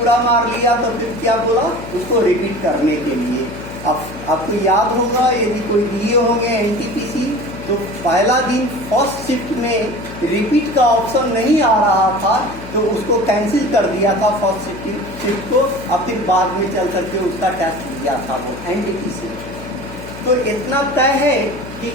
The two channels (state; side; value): noise; left; hum, 13 dB below the sound